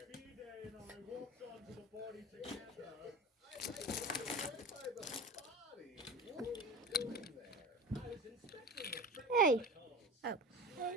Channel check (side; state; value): both; normal; correlation 0.32